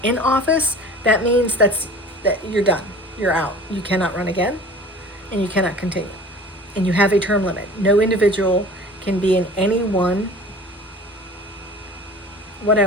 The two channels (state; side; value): normal; both; correlation 0.42